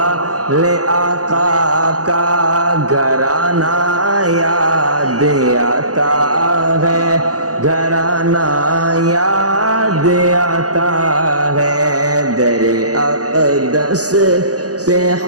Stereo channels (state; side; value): late; left; 0.67 ms